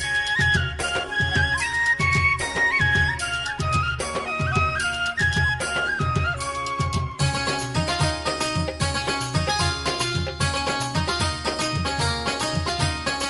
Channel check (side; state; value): both; identical; correlation 1.00